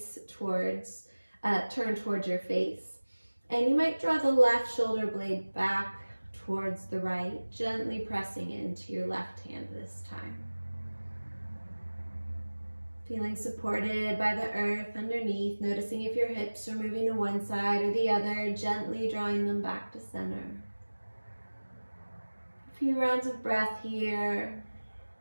towards your face. And you might draw the left shoulder blade back towards the right, gently pressing into your left hand this time. Feeling supported by the earth underneath, noticing if your hips are moving to one side or the other, gently drawing them back to center. A few rounds of breath here.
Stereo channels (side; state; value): both; inverted; correlation -1.00